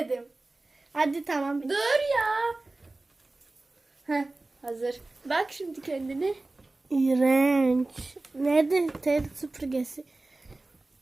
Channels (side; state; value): left; quieter; 3.0 dB